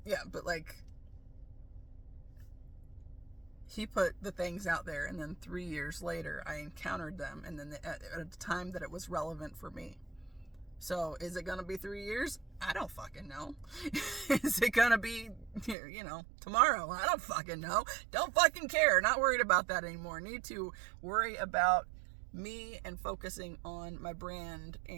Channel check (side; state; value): left; drops out; at 15.8 s